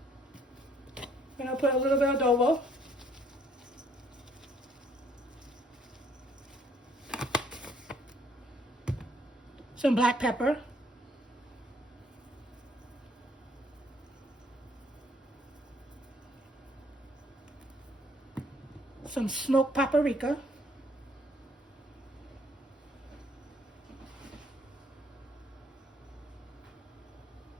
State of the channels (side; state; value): both; normal; correlation 0.65